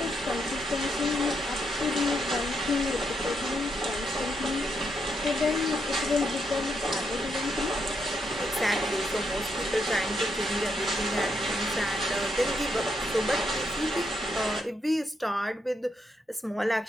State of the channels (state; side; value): normal; both; correlation 0.79